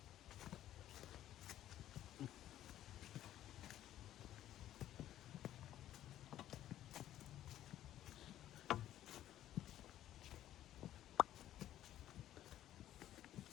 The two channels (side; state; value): right; quieter; 12.5 dB